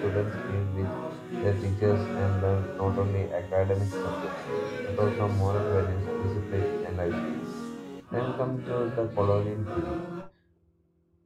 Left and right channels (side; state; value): both; identical; correlation 1.00